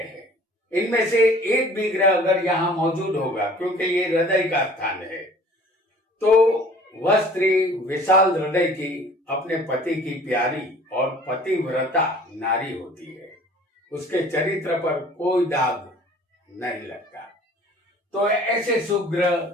इनमें से एक भी ग्रह अगर यहाँ मौजूद होगा, क्योंकि ये हृदय का स्थान है, तो वह स्त्री विशाल हृदय की, अपने पति की प्यारी और पतिव्रता नारी होती है। उसके चरित्र पर कोई दाग नहीं लगता। तो ऐसे शुभ ग्रह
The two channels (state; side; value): normal; both; correlation 0.50